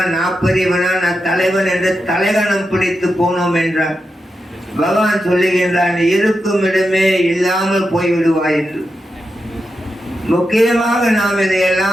நான் பெரியவனா, நான் தலைவன் என்று தலைகணம் பிடித்து போனோம் என்றார். பகவான் சொல்லுகின்றான், இருக்கும் இடமே இல்லாமல் போய்விடுவாய் என்று. முக்கியமாக நாம்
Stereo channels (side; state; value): both; normal; correlation 0.88